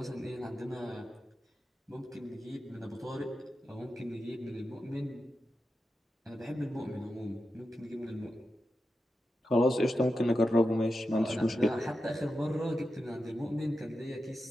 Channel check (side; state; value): both; normal; correlation 0.90